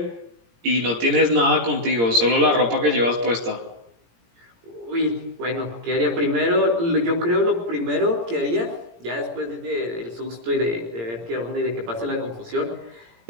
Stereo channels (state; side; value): late; left; 17 ms